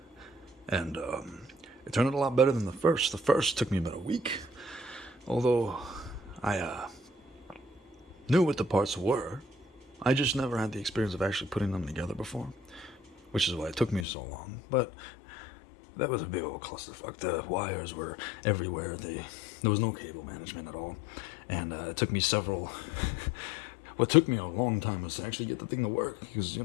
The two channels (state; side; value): drops out; right; at 14.1 s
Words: And it turned out a lot better than the first. The first took me about a week, although I knew what the parts were. I just never had the experience of actually putting them together before, which is why it took me so long. But that was a big old clusterfuck. The wires were everywhere. There was no cable management at all. And it took me several... what took me a long time was to actually get the thing to work, because,